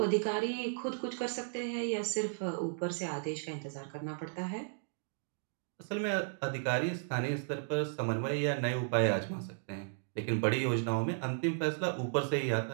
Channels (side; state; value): left; silent; digital silence